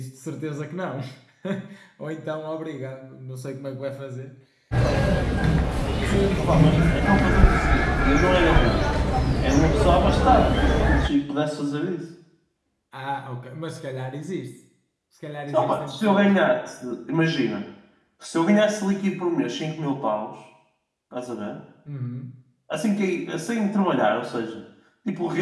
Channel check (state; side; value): identical; both; correlation 1.00